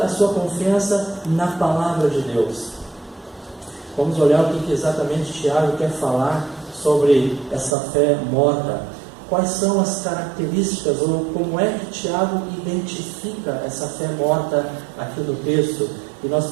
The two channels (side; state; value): left; drops out; at 7.8 s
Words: sua confiança na palavra de Deus. Vamos olhar o que exatamente Tiago quer falar sobre essa fé morta. Quais são as características, ou como é que Tiago identifica essa fé morta aqui no texto? E nós